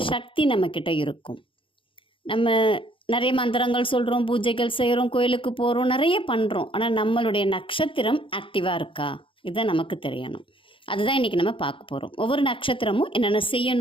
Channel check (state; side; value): late; right; 0.25 ms